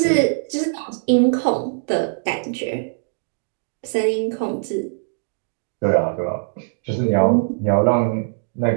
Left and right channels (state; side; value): silent; left; digital silence